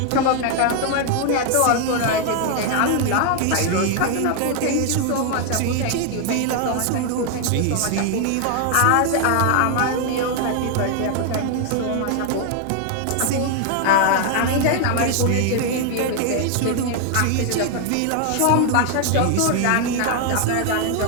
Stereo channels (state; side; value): different; both; correlation 0.00